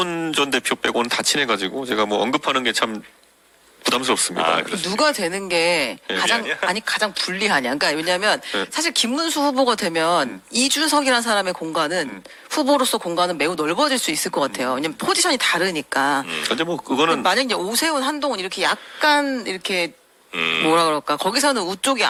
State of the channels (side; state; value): both; identical; correlation 1.00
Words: 전 대표 빼고는 다 친해가지고 제가 언급하는 게 참 부담스럽습니다. 누가 되는 게 가장 불리하냐. 그러니까 왜냐하면 사실 김문수 후보가 되면 이준석이라는 사람의 공간은 후보로서 공간은 매우 넓어질 수 있을 것 같아요. 왜냐면 포지션이 다르니까. 근데 그거는 만약 이제 오세훈, 한동훈 이렇게 약간 이렇게 뭐라 그럴까 거기서는 우쪽이